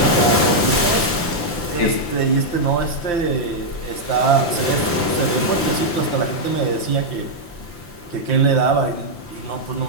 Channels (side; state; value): right; late; 5.8 ms